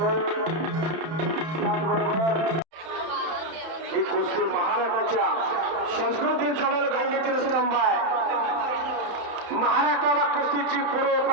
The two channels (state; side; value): late; left; 31 ms